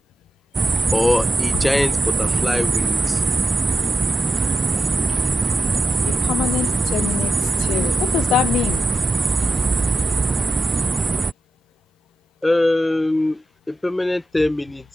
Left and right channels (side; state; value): both; normal; correlation 0.90